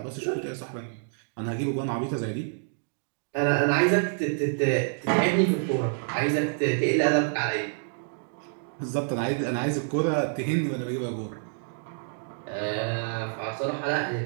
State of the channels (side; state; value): left; silent; digital silence